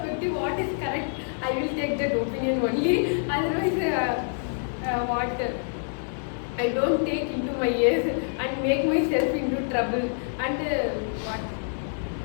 what is correct, I will take that opinion only. Otherwise, what I don't take into my ears and make myself into trouble. And what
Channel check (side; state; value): right; silent; digital silence